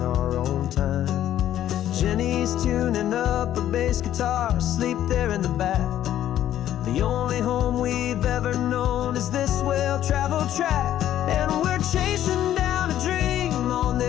our own time. Jenny's tuning up her bass guitar, asleep there in the back. The only home we've ever known is this well-traveled track. And we're chasing down a dream on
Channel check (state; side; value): quieter; right; 11.9 dB